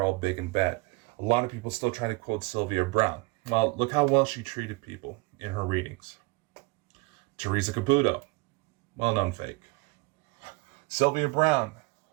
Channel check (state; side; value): quieter; left; 25.6 dB